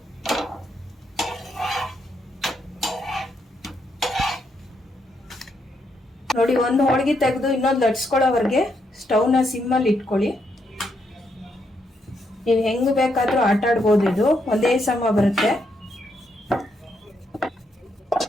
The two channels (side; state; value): both; normal; correlation 0.78